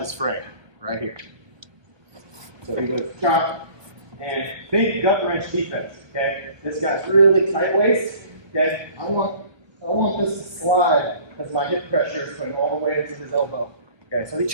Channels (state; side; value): late; left; 1.2 ms